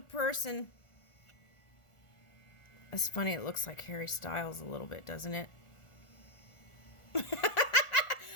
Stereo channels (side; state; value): right; late; 1.4 ms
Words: It's funny, it looks like Harry Styles a little bit, doesn't it?